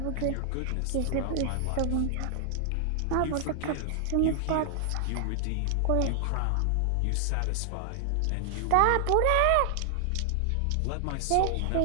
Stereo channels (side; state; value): both; different; correlation 0.00